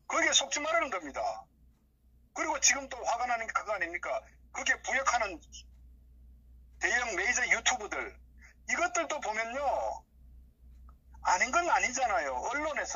거기에 속지 말라는 겁니다. 그리고 지금 또 화가 나는 게 그거 아닙니까? 거기에 부역하는 대형 메이저 유튜브들 이것들도 보면요. 아닌 건 아니잖아요.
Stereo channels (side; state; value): both; identical; correlation 1.00